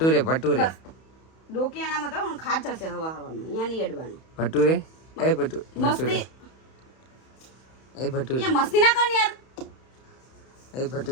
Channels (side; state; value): right; late; 31 ms